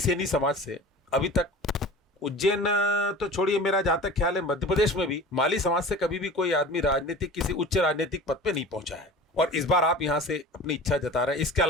समाज से अभी तक उज्जैन तो छोड़िए, मेरा जहां तक ख्याल है मध्य प्रदेश में भी माली समाज से कभी भी कोई आदमी राजनीतिक किसी उच्च राजनीतिक पद पे नहीं पहुंचा है। और इस बार आप यहां से अपनी इच्छा जता रहे हैं। इसके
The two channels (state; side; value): normal; both; correlation 0.38